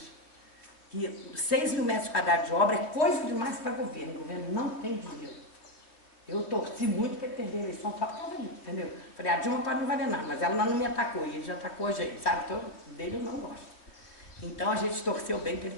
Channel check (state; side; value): late; right; 3.1 ms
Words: Que 6 mil metros quadrados de obra é coisa demais para o governo. O governo não tem dinheiro. Eu torci muito para ele perder a eleição só por causa disso, entendeu? Falei, a Dilma pode não valer nada, mas ela não me atacou, e ele já atacou a gente, sabe? Então, dele eu não gosto. Então, a gente torceu bem para ele